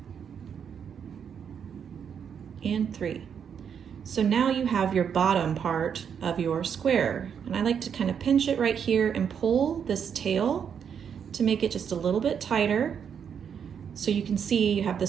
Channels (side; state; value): left; quieter; 7.6 dB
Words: and 3. So now you have your bottom part of your square, and I like to kind of pinch it right here and pull this tail to make it just a little bit tighter so you can see you have